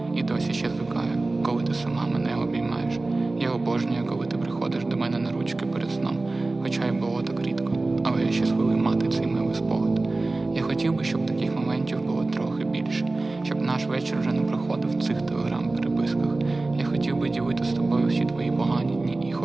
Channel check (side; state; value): left; quieter; 3.2 dB